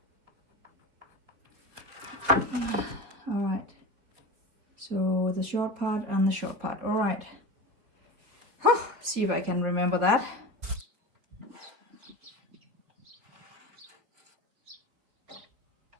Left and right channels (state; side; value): late; left; 4.6 ms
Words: All right, so the short part and the short part. All right, see if I can remember that.